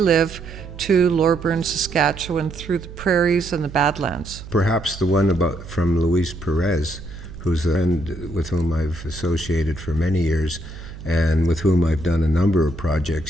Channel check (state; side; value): noise; right; hum, 14 dB below the sound